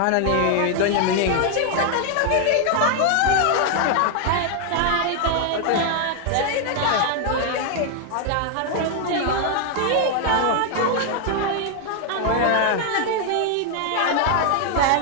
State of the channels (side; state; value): both; different; correlation 0.00